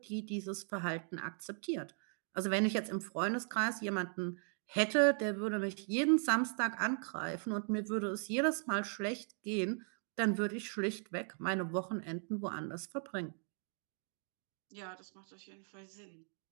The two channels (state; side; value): silent; left; 52 dB below the other